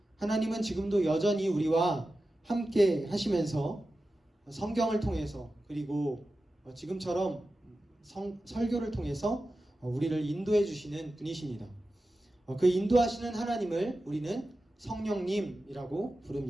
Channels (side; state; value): both; normal; correlation 0.93